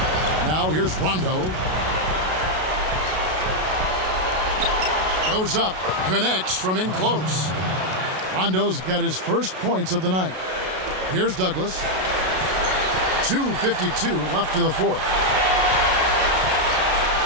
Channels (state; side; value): late; left; 32 ms